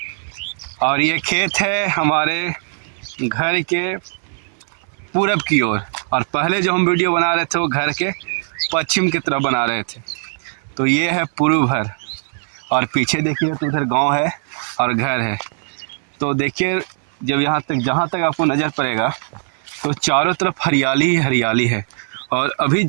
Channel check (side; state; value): left; silent; 66 dB below the other